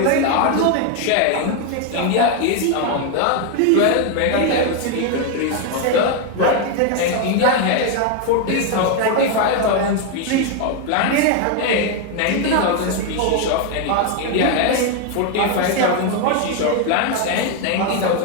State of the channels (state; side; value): different; both; correlation 0.01